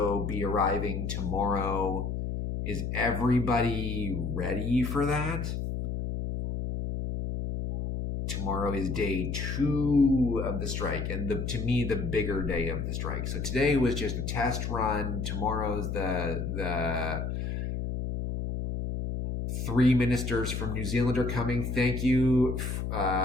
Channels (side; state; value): left; noise; hum, 3 dB below the sound